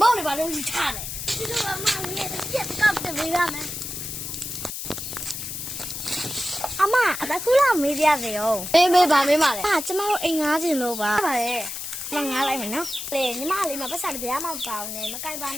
ောင်နေပါလို့ယူချတယ်ဒီလိုအမလေးပြက်ကပ်တယ်မေးရမယ်အမအတကူလာမေးပြစေရောမေးပါမေးပါလေကျမတို့အိမ်ငားချင်လို့ပါပါလေမငားလိုက်မယ်နော်လေညီမလေးမပတ်စံတရားမပေါင်းနဲ့မကြိုက်ပါ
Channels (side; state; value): left; noise; hiss, 6 dB below the sound